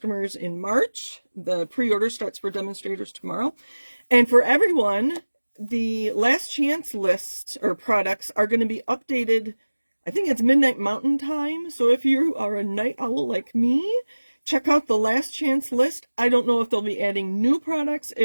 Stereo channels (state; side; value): inverted; both; correlation -1.00